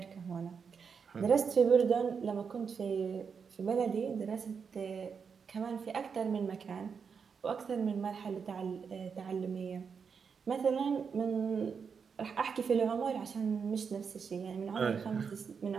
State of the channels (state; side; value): quieter; left; 6.1 dB